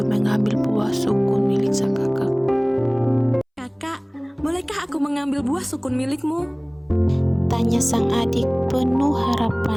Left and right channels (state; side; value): identical; both; correlation 1.00